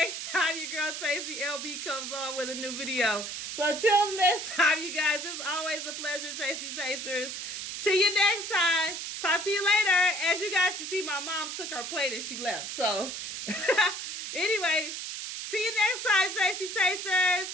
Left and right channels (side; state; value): right; noise; hiss, 6 dB below the sound